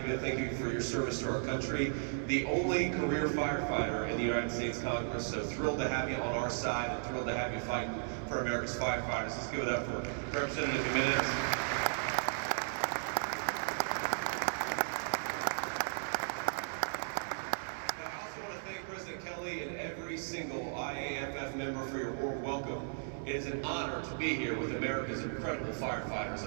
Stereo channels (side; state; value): left; silent; 54 dB below the other